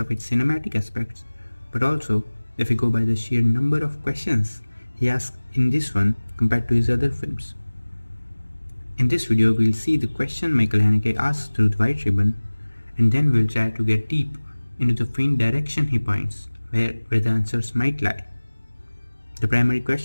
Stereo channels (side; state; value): both; inverted; correlation -1.00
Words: its cinematic aspects, but also if we go by the sheer number of questions he asks in this one compared to his other films. In this video, we'll see the question Michael Haneke asks through the White Ribbon, and then we'll try to get deep into the faint direction he points, where the answers might lie. The primary